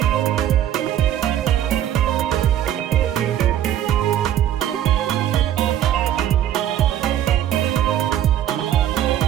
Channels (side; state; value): left; quieter; 11.1 dB